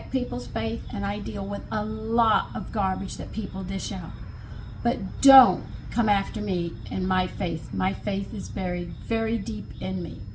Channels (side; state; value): both; identical; correlation 1.00